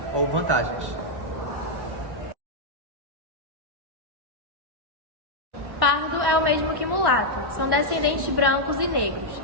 ou vantagens. Pardo é o mesmo que mulato, são descendentes brancos e negros.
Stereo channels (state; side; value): late; left; 1.1 ms